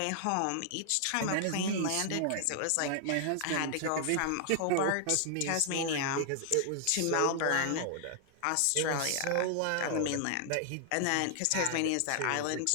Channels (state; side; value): different; both; correlation 0.00